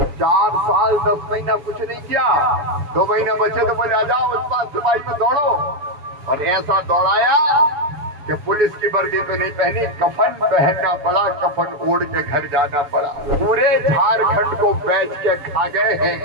4 साल 10 महीना कुछ नहीं किया, 2 महीने बचे तो बोले आ जाओ उत्पाद सिपाही में दौड़ो, और ऐसा दौड़ाया कि पुलिस की वर्दी तो नहीं पहनी, कफन पहनना पड़ा, कफन ओढ़ के घर जाना पड़ा। पूरे झारखंड को बेच के खा गए हैं।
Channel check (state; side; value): late; left; 7.3 ms